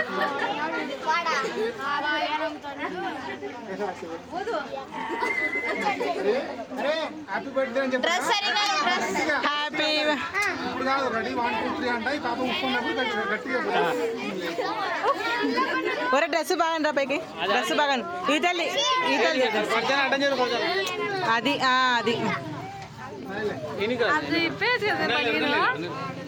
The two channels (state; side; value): identical; both; correlation 1.00